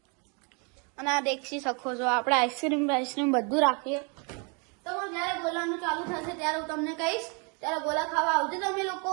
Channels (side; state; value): left; quieter; 34.3 dB